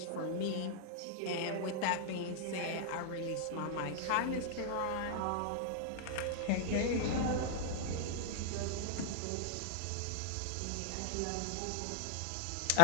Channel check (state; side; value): different; both; correlation -0.01